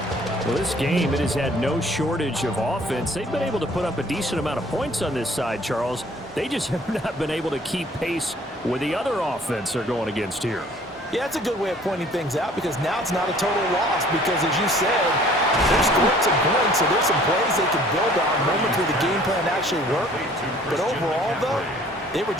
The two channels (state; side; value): normal; both; correlation 0.54